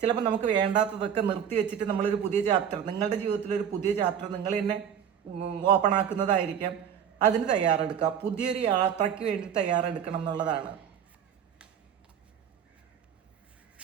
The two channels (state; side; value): quieter; left; 8.6 dB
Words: ചിലപ്പോൾ നമുക്ക് വേണ്ടാത്തതൊക്കെ നിർത്തി വെച്ചിട്ട് നമ്മളൊരു പുതിയ ചാപ്റ്റർ, നിങ്ങളുടെ ജീവിതത്തിലൊരു പുതിയ ചാപ്റ്റർ നിങ്ങൾ തന്നെ ഓപ്പൺ ആക്കുന്നതായിരിക്കാം. അതിന് തയ്യാറെടുക്കുക, പുതിയൊരു യാത്രയ്ക്ക് വേണ്ടി തയ്യാറെടുക്കണം എന്നുള്ളതാണ്.